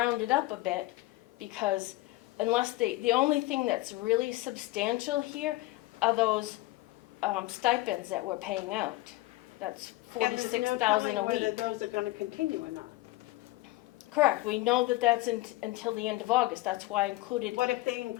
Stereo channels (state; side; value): quieter; right; 18.9 dB